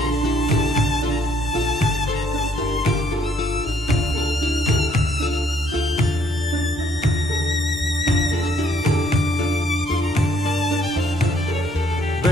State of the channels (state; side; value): normal; both; correlation 0.66